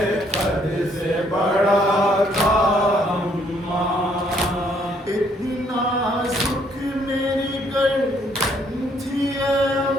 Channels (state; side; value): normal; both; correlation 0.67